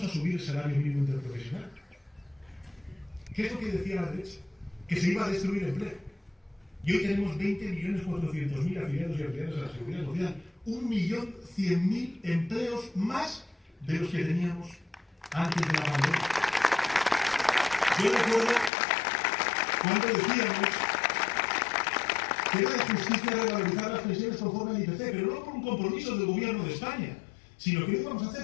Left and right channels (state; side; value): drops out; right; at 18.7 s